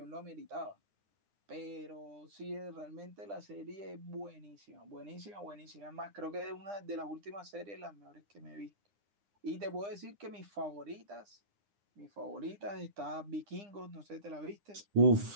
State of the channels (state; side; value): late; left; 9.9 ms